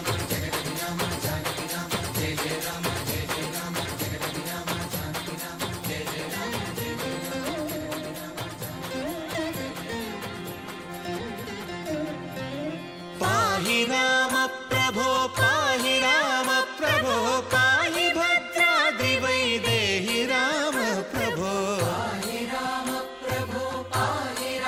జగతి రామ జానకి రామ జయ జయ రామ జయ జయ రామ జగతి రామ జానకి రామ జయ జయ రామ జయ జయ రామ. పాహి రామ ప్రభో పాహి రామ ప్రభో పాహి భద్రాద్రి వైదేహి రామ ప్రభో. పాహి రామ ప్రభో పాహి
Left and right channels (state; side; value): identical; both; correlation 1.00